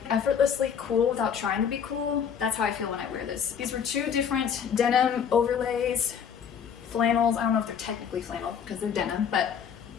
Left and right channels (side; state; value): right; quieter; 7.6 dB